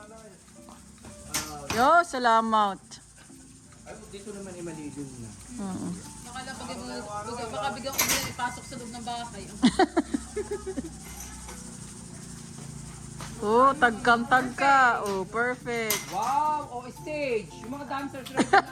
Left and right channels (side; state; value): both; identical; correlation 1.00